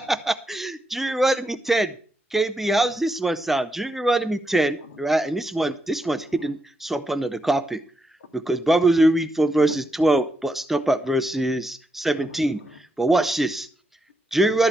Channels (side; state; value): both; normal; correlation 0.83